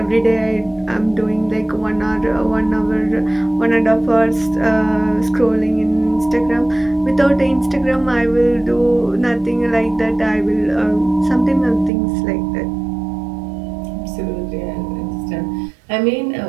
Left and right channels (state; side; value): drops out; left; at 11.9 s